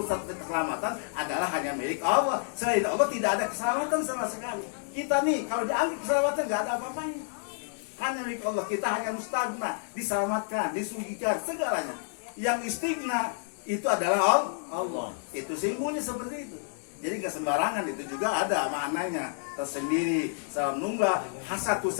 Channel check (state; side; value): silent; right; 58 dB below the other